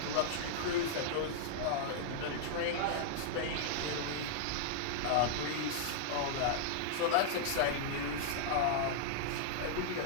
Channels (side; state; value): both; different; correlation -0.01